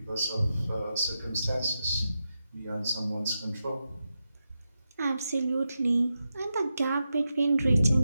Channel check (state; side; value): inverted; both; correlation -0.89